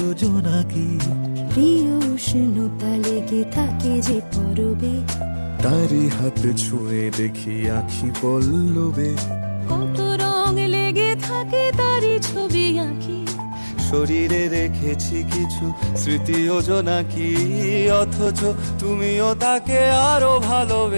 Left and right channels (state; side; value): inverted; both; correlation -1.00